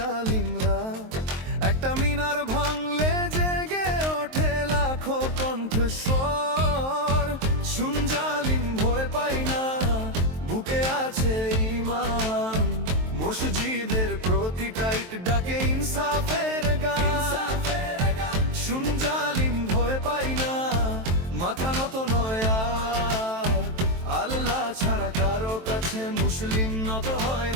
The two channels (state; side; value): late; left; 23 ms